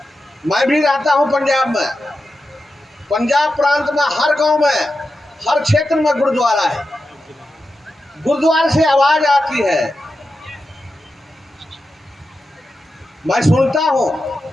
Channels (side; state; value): both; normal; correlation 0.90